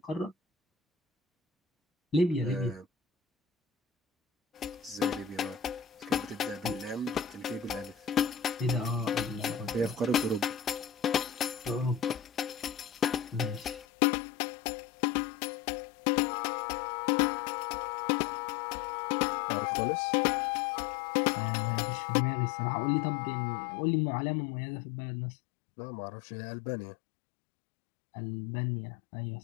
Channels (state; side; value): drops out; right; at 13.9 s